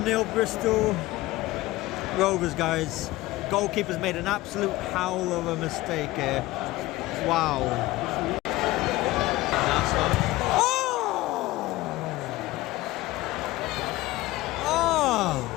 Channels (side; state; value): right; quieter; 18.4 dB